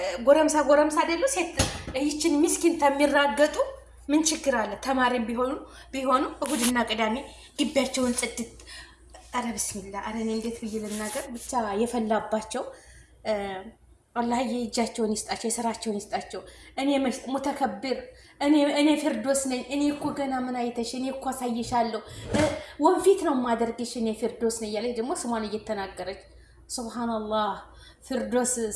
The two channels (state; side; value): identical; both; correlation 1.00